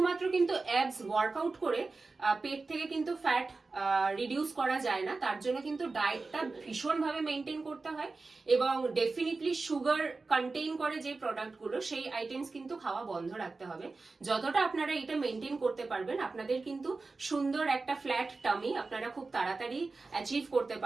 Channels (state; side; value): quieter; left; 3.8 dB